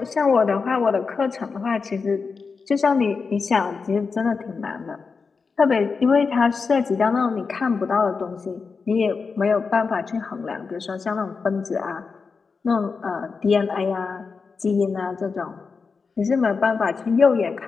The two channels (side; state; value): right; quieter; 4.9 dB